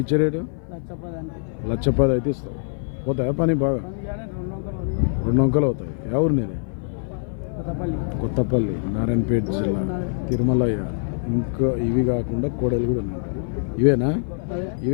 ఇచ్చే రేటు? 1,10,000 అయితే ఇస్తావు. పోతాయా పని బాగా? 2 వంకలు అవుతాయి. ఎవరు నీది? కొత్తపల్లి, నారాయణపేట జిల్లా, తిరుమలయ్య. ఇంకా ఇవి కాకుండా కోడలు కూడా ఉన్నాయి. ఇవేనా?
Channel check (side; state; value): right; silent; 57 dB below the other